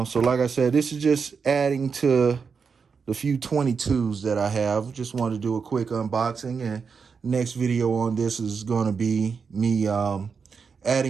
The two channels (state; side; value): quieter; left; 5.7 dB